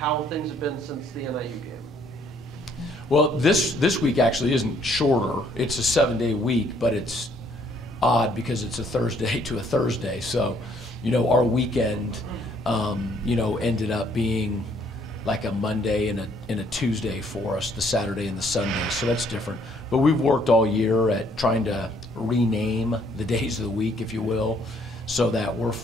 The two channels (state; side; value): normal; both; correlation 0.65